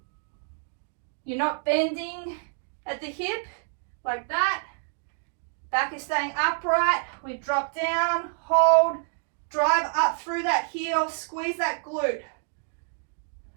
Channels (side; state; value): left; silent; 60 dB below the other